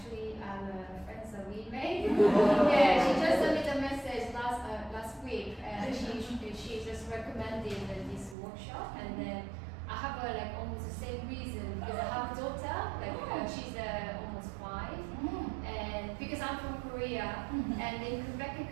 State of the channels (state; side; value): drops out; left; at 8.3 s